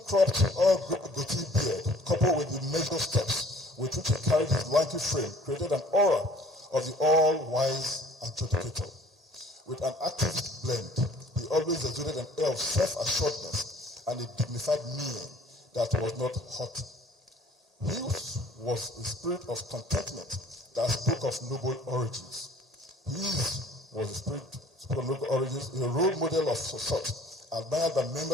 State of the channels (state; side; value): normal; both; correlation 0.53